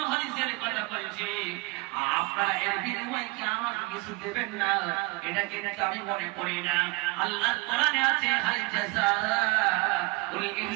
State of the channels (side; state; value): left; quieter; 25.9 dB